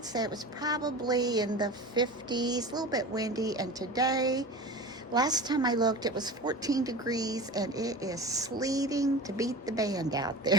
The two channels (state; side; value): normal; both; correlation 0.32